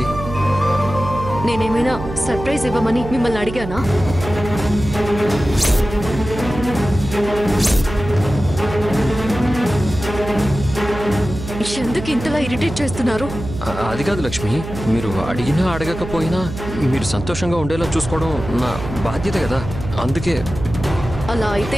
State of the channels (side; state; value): right; noise; hum, 9 dB below the sound